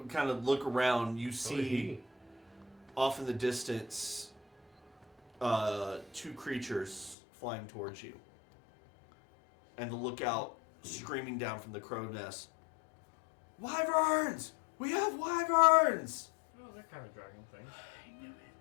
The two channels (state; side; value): drops out; right; at 7.2 s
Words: kind of look around, you see off in the distance 2 creatures flying towards you. And the lookout screaming down from the crow nest, "Wyverns! We have wyverns!" Oh, that kind of dragon thing.